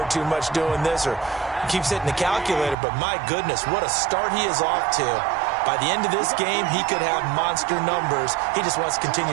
too much doing this or keeps hitting the calculator. But my goodness, what a start he is off to. By the end of this game, he could have monster numbers. He just wants to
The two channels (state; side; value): drops out; left; at 2.8 s